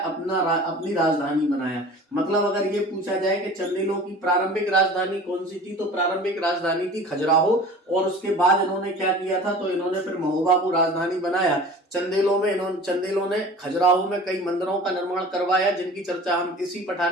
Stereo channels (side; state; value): both; normal; correlation 0.41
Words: राजधानी बनाया। मतलब अगर ये पूछा जाए कि चंदेलों की प्रारंभिक राजधानी कौन सी थी, तो प्रारंभिक राजधानी थी खजुराहो। और उसके बाद इन्होंने क्या किया था? तो इन्होंने फिर महोबा को राजधानी बनाया। चंदेलों ने खजुराहो में कई मंदिरों का निर्माण करवाया, जिनकी चर्चा हम इसी